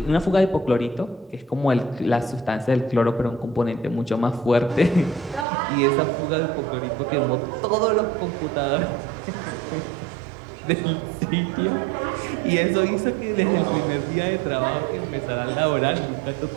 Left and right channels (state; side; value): drops out; left; at 5.5 s